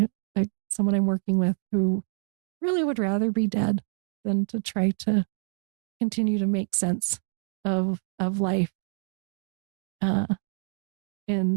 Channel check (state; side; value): silent; left; 60 dB below the other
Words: someone I'm working with who really would rather be dead than to try to continue to make sense of life